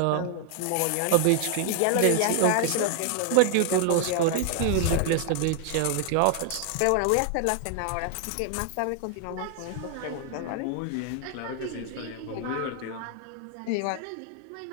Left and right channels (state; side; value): different; both; correlation 0.00